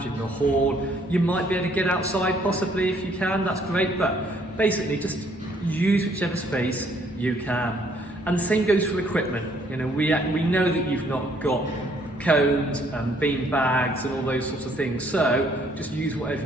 in the hall. You might be able to get outside possibly if you can, that's great, but basically just use whichever space you can. And the same goes for equipment. You know, we know that you've not got cones and bean bags and all those sorts of things, so just use whatever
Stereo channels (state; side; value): normal; both; correlation 0.65